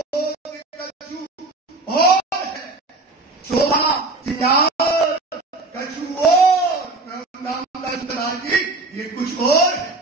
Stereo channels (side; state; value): left; quieter; 3.2 dB